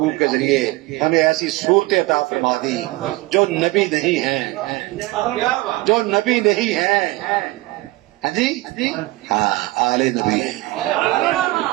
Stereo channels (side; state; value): left; quieter; 20.4 dB